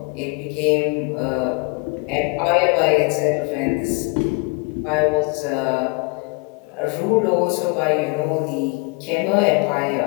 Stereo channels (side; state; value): right; quieter; 31.0 dB